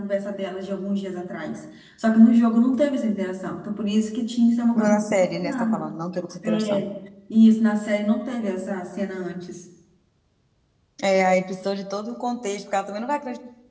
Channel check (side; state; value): both; identical; correlation 1.00